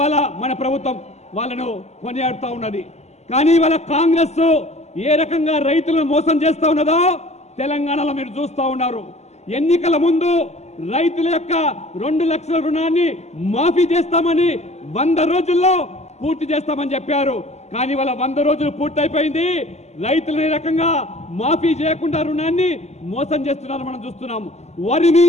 మన ప్రభుత్వం వాళ్ళను కొనియాడుతూ ఉన్నది. కానీ ఇవాళ కాంగ్రెస్ ఏ రకంగా రైతులను మోసం చేస్తూ ఉన్నదో తెలంగాణలో మీరు చూస్తూ ఉన్నారు. ఎన్నికల ముందు రైతుల యొక్క 2 లక్షల రుణాన్ని మాఫీ చేస్తామని 100 రోజుల్లో పూర్తి చేస్తామని చెప్పారు. కానీ వాళ్ళ 100 రోజులు పూర్తయిపోయింది. రైతులు ఈ రకంగా మాఫీ చేయకుండా రుణాన్ని మోసం చేస్తున్నారు మనం చూస్తున్నాము. వరి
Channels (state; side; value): late; right; 0.32 ms